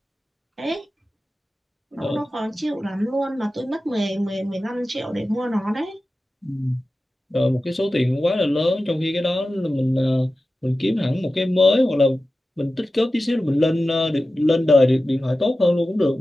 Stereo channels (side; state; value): both; normal; correlation 0.94